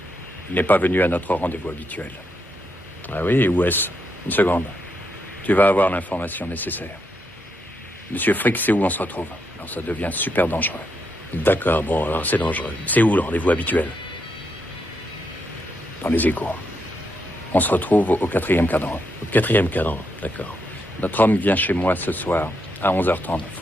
Il n'est pas venu à notre rendez-vous habituel. Ah oui, et où est-ce? Une seconde. Tu vas avoir l'information nécessaire. Monsieur Frick sait où on se retrouve. Alors ça devient super dangereux. D'accord, bon, alors c'est dangereux. C'est où le rendez-vous habituel? Dans les égouts. On se retrouve au 4e cadran. Au 4e cadran, d'accord. Notre homme vient chez moi ce soir, à 11h30.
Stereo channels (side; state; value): both; normal; correlation 0.80